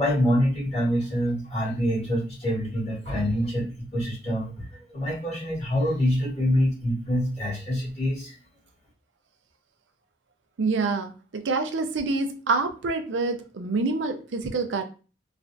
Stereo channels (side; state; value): both; normal; correlation 0.64